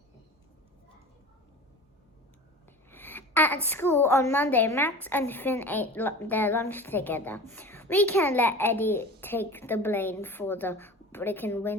At school on Monday, Max and Finn ate their lunch together. "We can't let Eddie take the blame for the broken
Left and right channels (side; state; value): both; normal; correlation 0.36